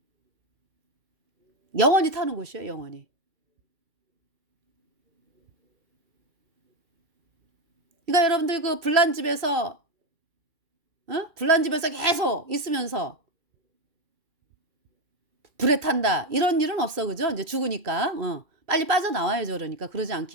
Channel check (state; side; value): late; left; 2.4 ms